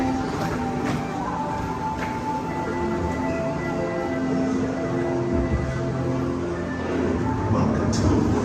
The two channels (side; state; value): both; identical; correlation 1.00